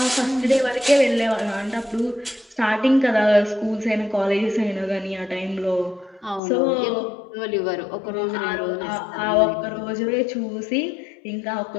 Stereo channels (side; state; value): right; drops out; at 6.4 s